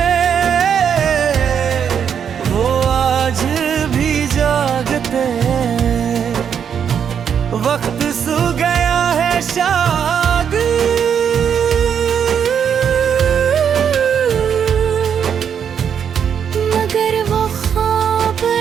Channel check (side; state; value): left; quieter; 7.8 dB